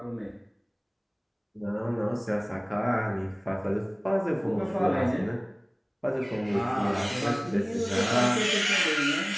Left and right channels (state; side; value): identical; both; correlation 1.00